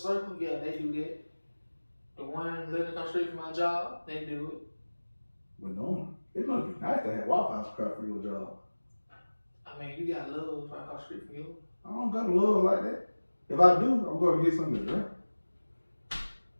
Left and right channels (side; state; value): both; inverted; correlation -1.00